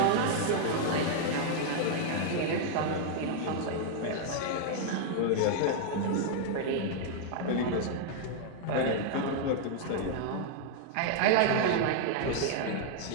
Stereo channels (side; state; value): both; different; correlation 0.00